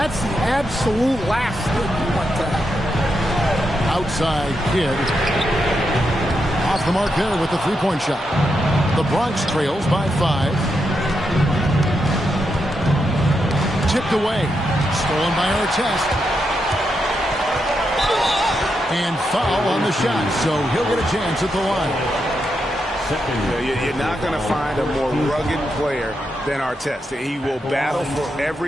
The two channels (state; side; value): normal; both; correlation 0.84